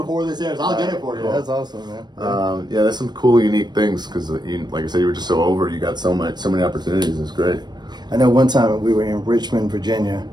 this airs. I'll get it for you. That's awesome, man. Yeah, there's some cool, unique things because, like I said, you were just so over. You got so many opportunities. It's great. I know one time we were in Richmond, Virginia,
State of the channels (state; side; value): late; left; 0.21 ms